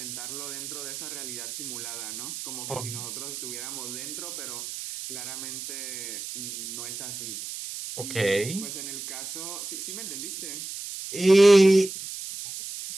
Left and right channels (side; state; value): right; noise; hiss, 8 dB below the sound